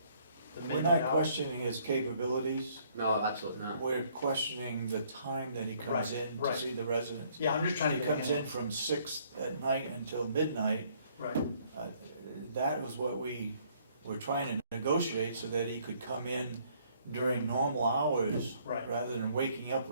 the We're midnight not hour? questioning his capabilities, No, absolutely not. we're questioning the time that he comes Right, in to right. see the residents. Yeah, I'm just trying to He get a comes in handle. from 6 at night until midnight. Right, That was what we were trying to negotiate, so that he could come in during normal hours, right. rather than waking up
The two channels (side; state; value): both; inverted; correlation -0.63